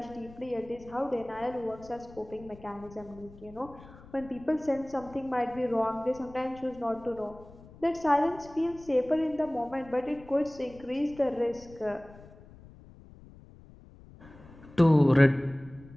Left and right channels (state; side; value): noise; left; rumble, 20 dB below the sound